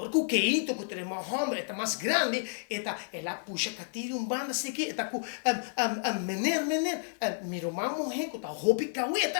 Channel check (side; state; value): right; silent; 57 dB below the other